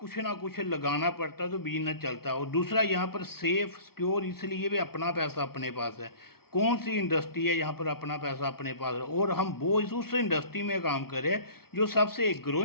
ना कुछ लगाना पड़ता है तो बिजनेस चलता है। और दूसरा यहाँ पर सेफ सिक्योर इसलिए भी अपना पैसा अपने पास है। कौन सी इंडस्ट्री है यहाँ पर अपना पैसा अपने पास है और हम वो उस इंडस्ट्री में काम करें जो सबसे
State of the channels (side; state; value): right; late; 0.94 ms